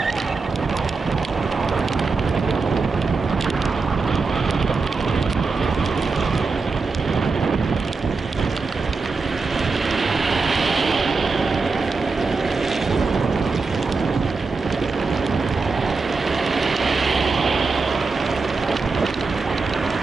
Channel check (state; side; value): quieter; left; 4.2 dB